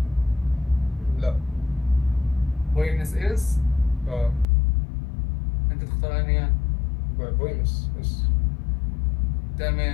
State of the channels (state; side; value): drops out; right; at 4.5 s